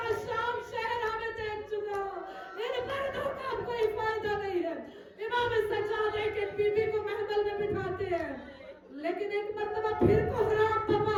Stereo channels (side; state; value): both; identical; correlation 1.00